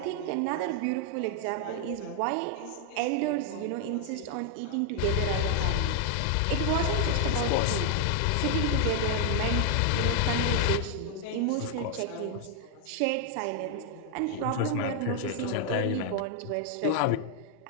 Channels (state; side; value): different; both; correlation 0.00